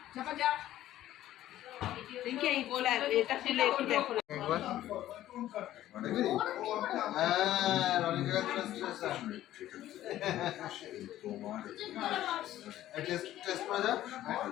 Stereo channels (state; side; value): quieter; right; 13.5 dB